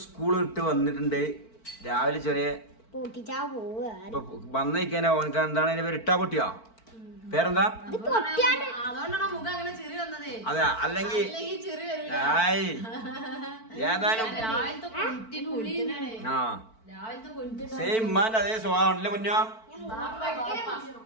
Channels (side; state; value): right; late; 4.5 ms